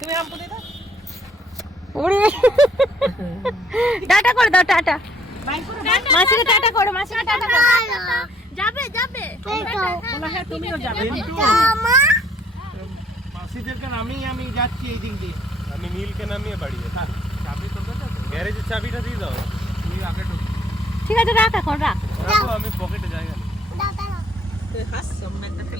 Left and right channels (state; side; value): normal; both; correlation 0.63